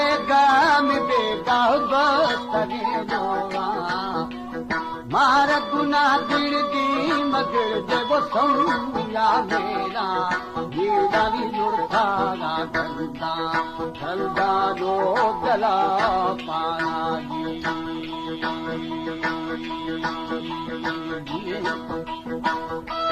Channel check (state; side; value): identical; both; correlation 1.00